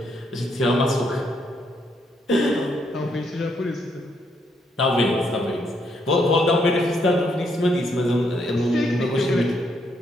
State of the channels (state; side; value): normal; both; correlation 0.75